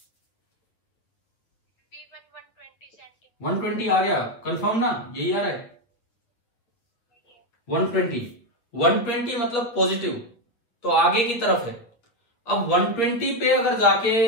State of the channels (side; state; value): right; late; 8.7 ms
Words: 120 आ गया, कंफर्म ना, यही आ रहा है 120 मतलब पॉजिटिव, तो आगे की तरफ है। अब 120 पे अगर जाके